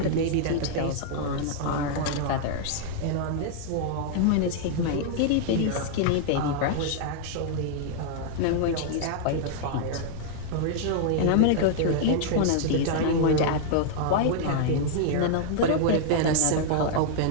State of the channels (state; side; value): different; both; correlation -0.01